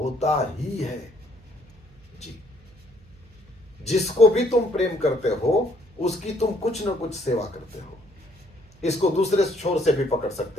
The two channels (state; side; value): noise; right; hum, 26 dB below the sound